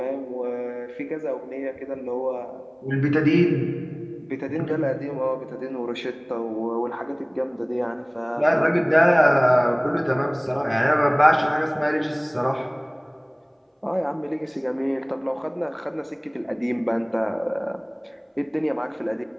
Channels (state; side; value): identical; both; correlation 1.00